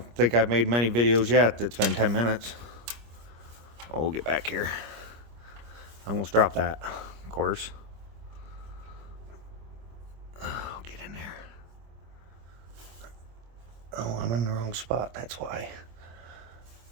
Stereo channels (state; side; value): late; left; 25 ms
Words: think I've made many videos yet that's been 10 minutes. Oh, we'll get back here. I almost dropped that, of course. Oh, get in there. Oh, I'm in the wrong spot. That's why.